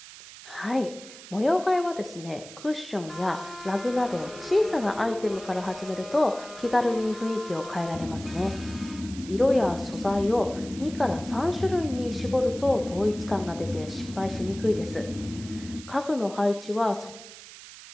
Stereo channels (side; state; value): right; noise; hiss, 16 dB below the sound